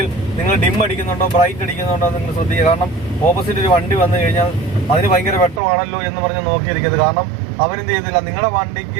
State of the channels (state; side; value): drops out; left; at 5.6 s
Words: നിങ്ങൾ ഡിം അടിക്കുന്നുണ്ടോ ബ്രൈറ്റ് അടിക്കുന്നുണ്ടോ നിങ്ങൾ ശ്രദ്ധിക്കുക. കാരണം ഓപ്പോസിറ്റ് ഒരു വണ്ടി വന്നു കഴിഞ്ഞാൽ അതിന് ഭയങ്കര വെട്ടമാണല്ലോ എന്ന് പറഞ്ഞ് നോക്കിയിരിക്കുന്നത്. കാരണം അവരെന്ത് ചെയ്തില്ല, നിങ്ങളുടെ